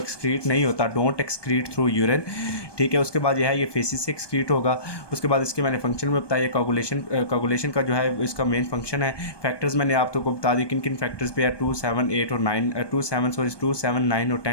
नहीं होता, डोंट एक्सक्रीट थ्रू यूरिन। ठीक है, उसके बाद यह है ये फेसिस से एक्सक्रीट होगा। उसके बाद इसके मैंने फंक्शन में बताया कोगुलेशन का जो है इसका मेन फंक्शन है। फैक्टर्स मैंने आपको बता दी किन किन फैक्टर्स पे है, 2, 7, 8 और 9 2, 7, 9 और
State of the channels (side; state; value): right; late; 1.2 ms